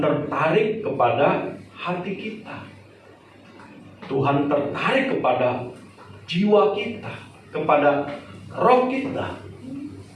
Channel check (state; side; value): identical; both; correlation 1.00